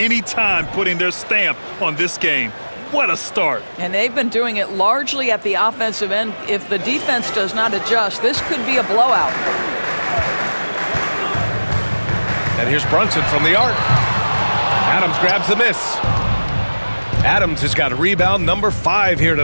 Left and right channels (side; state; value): both; inverted; correlation -1.00